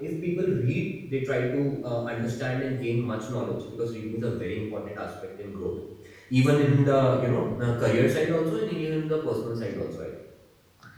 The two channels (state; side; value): identical; both; correlation 1.00